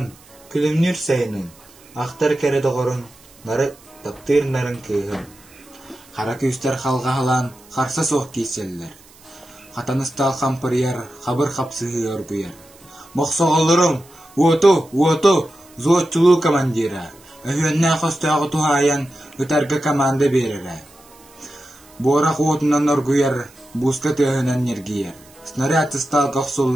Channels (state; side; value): noise; right; hiss, 26 dB below the sound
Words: күлімнер сайының. Ақтар кәрі доғырын нары таптырнарын кыйым. Қара күйістер қалға халан қарса соқ кейселлер. Қатаныстал қампырияр, қабыр қапсығы өрбүйер. Моқсоғылырым, уоту, зоотчулу командира. Өйенне қостағы тухайан үтәргі команда берері. Борақ уотынан өргүйер, бусқа түйінен нергейер. Снаряд стал